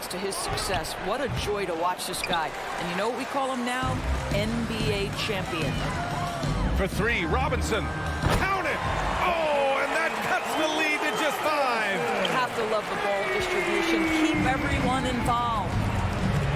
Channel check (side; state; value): both; identical; correlation 1.00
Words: to his success. What a joy to watch this guy. And you know what we call him now? NBA champion. For 3, Robinson. Count it! Oh, and that cuts the lead to just 5. You have to love the ball distribution. Keep everyone involved.